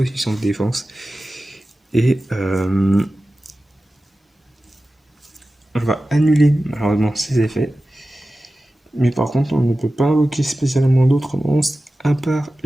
de défense. Et on va annuler malheureusement ses effets. Mais par contre, on ne peut pas invoquer spécialement d'autres monstres à part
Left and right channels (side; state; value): both; normal; correlation 0.95